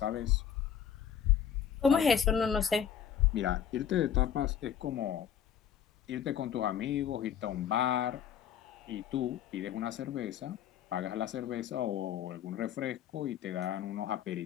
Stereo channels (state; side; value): quieter; right; 8.9 dB